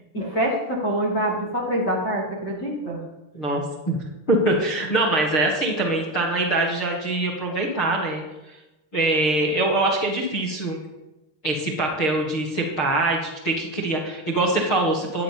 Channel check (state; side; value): late; right; 6.6 ms